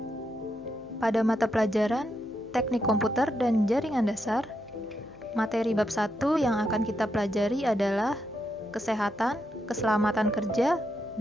Pada mata pelajaran Teknik Komputer dan Jaringan Dasar, materi bab 1 yang akan kita pelajari adalah Kesehatan, Keselamatan Kerja,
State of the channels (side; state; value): left; noise; hum, 28 dB below the sound